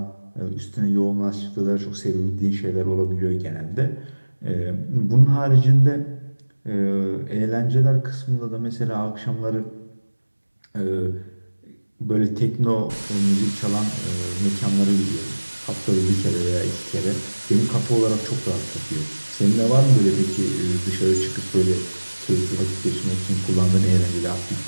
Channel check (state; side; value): inverted; both; correlation -1.00